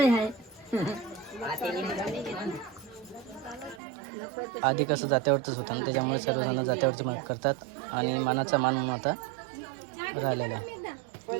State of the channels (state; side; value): drops out; left; at 3.8 s